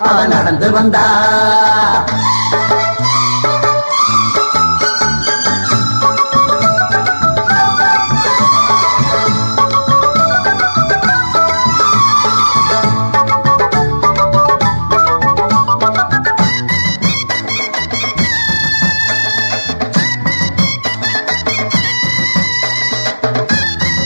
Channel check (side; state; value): both; inverted; correlation -1.00